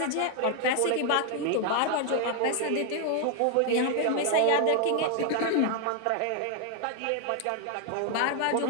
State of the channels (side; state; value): both; different; correlation 0.00